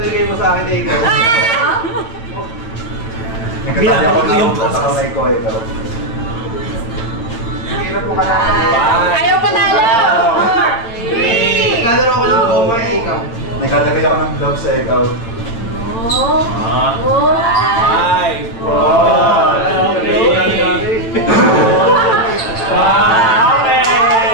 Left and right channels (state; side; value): late; right; 8.8 ms